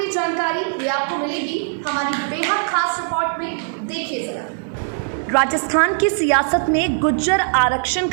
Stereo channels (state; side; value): silent; left; digital silence